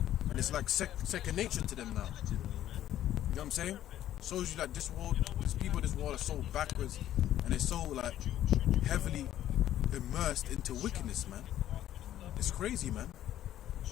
and it's like second nature to them now. You know what I'm saying? Shows you that this world, these people, this world are so backwards and they're so like heavily immersed into wickedness, man. It's crazy, man.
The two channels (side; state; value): right; quieter; 12.3 dB